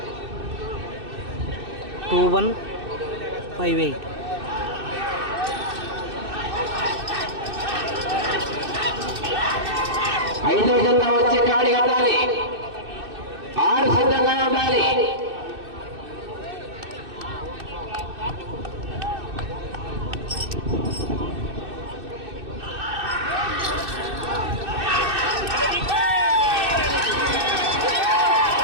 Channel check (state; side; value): late; left; 2.6 ms